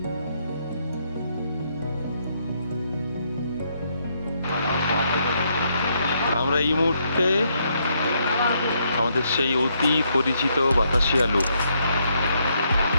আমরা এই মুহূর্তে আমাদের সেই অতি পরিচিত বাতাসিয়া লুপ।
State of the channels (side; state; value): both; inverted; correlation -0.74